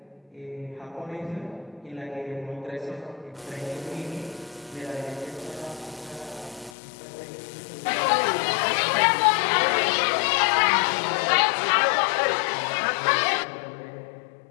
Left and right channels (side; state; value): right; drops out; at 6.7 s